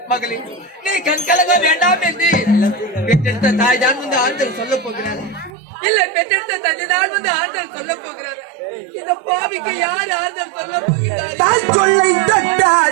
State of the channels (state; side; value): drops out; left; at 5.5 s